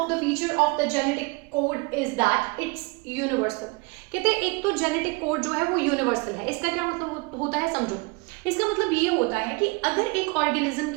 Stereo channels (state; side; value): quieter; left; 28.2 dB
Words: the feature of the genetic code is that it's universal. कहते एक तो जेनेटिक कोड जो है वो यूनिवर्सल है। इसका क्या मतलब होता है समझो। इसका मतलब ये होता है कि अगर एक ऑर्गेनिज्म